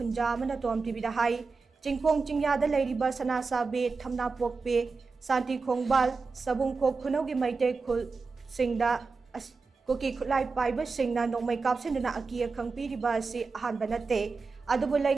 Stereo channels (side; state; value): left; quieter; 4.4 dB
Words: Amana Tom Tibida Hai Chingpong Chingyada Lairiba Sana Sabi Thamna Pokpi Santi Khongbal Sabung Khok Khunogi Maitei Khul Singda Kuki Khutlai Paiba Singna Nongmai Kapsinduna Akia Khangpiriba Asi Ahanba Nate Adubu